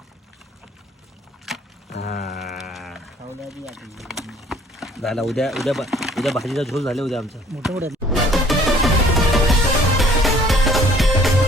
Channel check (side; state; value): both; normal; correlation 0.56